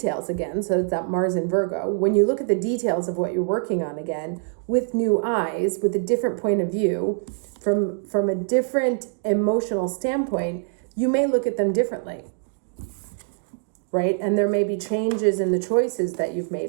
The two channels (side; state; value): left; silent; 63 dB below the other